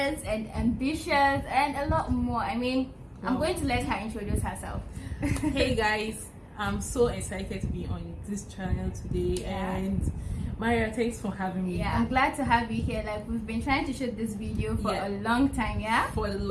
and ambitious and a lot more. I mean, I'm going to let her introduce herself. Hey guys, I'm so excited to be on this channel today, and Maria, thanks for having me. Yeah, I'm glad to have you here. Like, we've been trying to shoot this video for a long time, for the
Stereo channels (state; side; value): identical; both; correlation 1.00